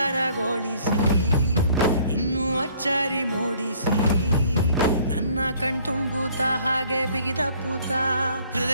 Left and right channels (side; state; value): both; inverted; correlation -0.58